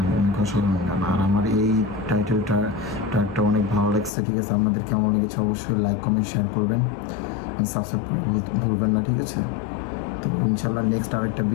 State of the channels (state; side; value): drops out; right; at 4.1 s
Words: অনেক অসাধারণ গান। আর আমার এই ট্র্যাকটা অনেক ভালো লাগছে, ঠিক আছে। আপনাদের কেমন লেগেছে অবশ্যই লাইক, কমেন্ট, শেয়ার করবেন, সাবস্ক্রাইব করা ভুলবেন না, ঠিক আছে। তো ইনশাল্লাহ নেক্সট আর একটা